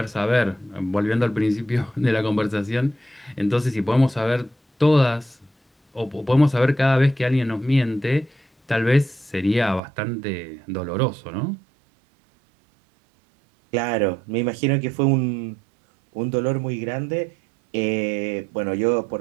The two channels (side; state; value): left; drops out; at 9.8 s